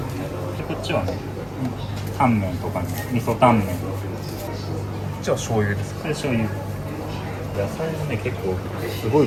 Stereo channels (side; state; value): both; identical; correlation 1.00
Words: こっちはね、タンメンとかね、味噌タンメン。こっちは醤油ですか？これ醤油。野菜もね結構すご